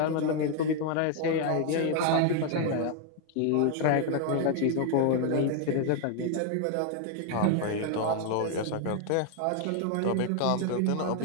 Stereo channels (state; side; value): different; both; correlation 0.01